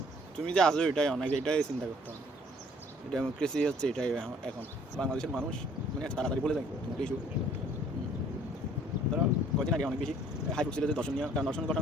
তুমি যে আজও এটাই অনেক, এটাই চিন্তা করতে হবে। ডেমোক্রেসি হচ্ছে এটাই এখন। বাংলাদেশের মানুষ মানে তাড়াতাড়ি বলে যায় তোমার ইস্যু। ধরো কদিন আগে অনেক বেশি হাই ছিল যে দর্শনীয়, কারণ দর্শন ঘটনা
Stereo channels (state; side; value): normal; both; correlation 0.58